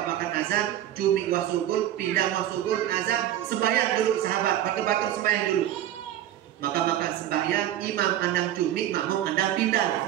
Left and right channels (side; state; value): left; quieter; 12.2 dB